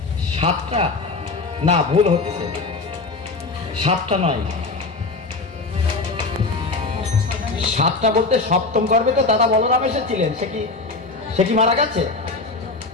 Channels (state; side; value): quieter; right; 3.7 dB